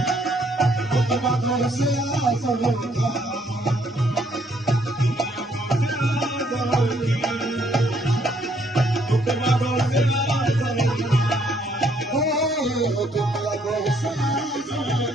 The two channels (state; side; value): normal; both; correlation 0.68